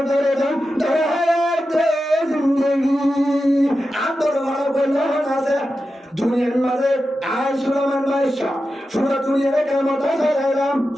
দুনিয়ার মাঝে আয় সুরামান বাদশা পুরো দুনিয়ারে কাম ক্ষমতা চালাইলাম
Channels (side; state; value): both; normal; correlation 0.91